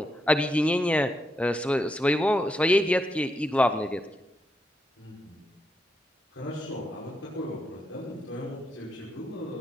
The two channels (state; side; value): normal; both; correlation 0.81